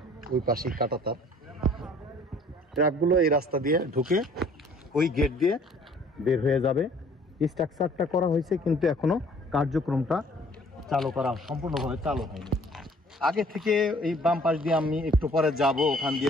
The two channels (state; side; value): normal; both; correlation 0.55